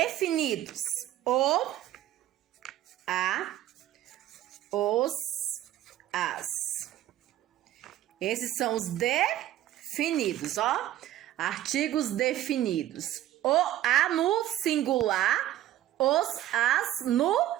O, a, os, as. Esses são os definidos, ó. Artigos definidos. O, a no singular, os, as no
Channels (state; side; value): quieter; left; 13.2 dB